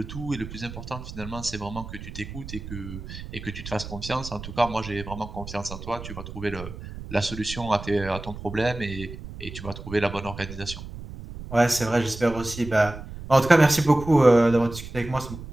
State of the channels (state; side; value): noise; right; rumble, 11 dB below the sound